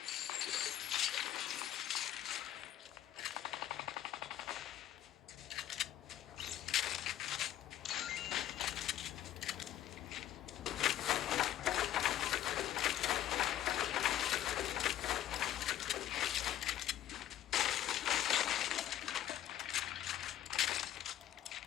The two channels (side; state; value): right; quieter; 12.2 dB